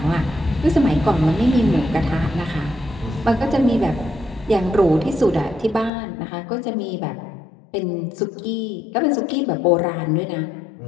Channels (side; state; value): right; drops out; at 5.9 s